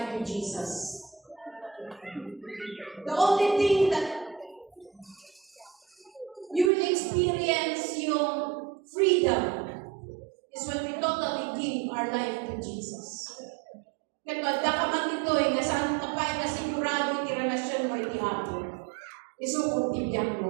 to Jesus. The only thing that you will experience yung freedom is when we totally give our life to Jesus. Kaya dakaman ito nga saan kapay na sigurado iti relasyon mo iti Apo. Isukong tibiyang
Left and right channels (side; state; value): left; drops out; at 6.7 s